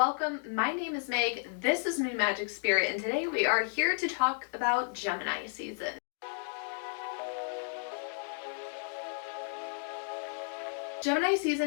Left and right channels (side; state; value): right; silent; 56 dB below the other